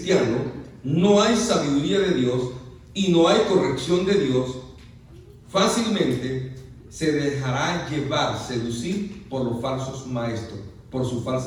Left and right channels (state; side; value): identical; both; correlation 1.00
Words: no hay sabiduría de Dios y no hay corrección de Dios, fácilmente se dejará llevar, seducir por los falsos maestros, por sus